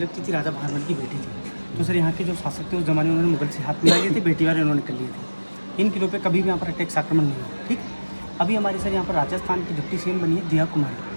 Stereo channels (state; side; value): inverted; both; correlation -1.00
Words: थी राजा भानवल की बेटी थी। तो सर यहाँ के जो शासक थे उस जमाने में उन्होंने मुगल से हाथ मिला लिए थे, बेटी वाले उन्होंने कर लिए थे। इन किलों पे कभी भी यहाँ पर अटैक्स आक्रमण नहीं हुआ। ठीक, अभी हमारे सर यहाँ पर राजस्थान की डिप्टी सीएम बनी है दिया कुमारी,